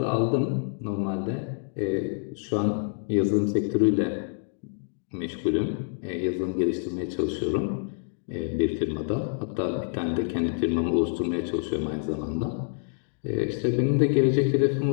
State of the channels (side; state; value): right; silent; 60 dB below the other